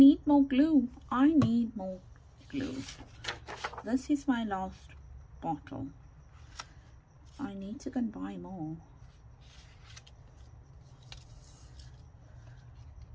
more glue. This is my last bottle. I need to go and buy more.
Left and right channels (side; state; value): both; identical; correlation 1.00